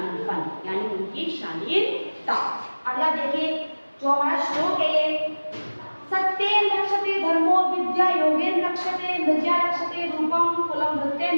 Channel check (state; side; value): inverted; both; correlation -1.00